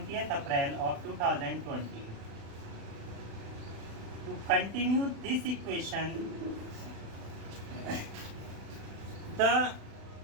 April of 2020. To continue this equation, the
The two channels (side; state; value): left; late; 36 ms